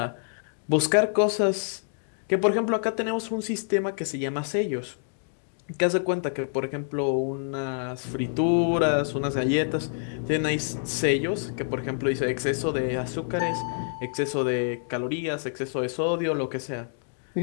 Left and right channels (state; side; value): silent; right; digital silence